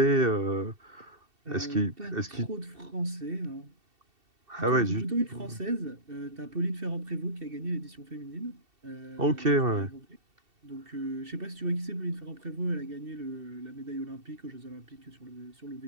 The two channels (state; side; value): late; left; 2.7 ms